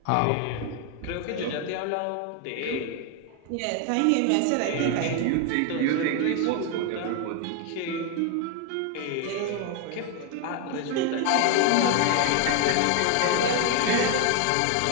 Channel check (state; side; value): different; both; correlation 0.01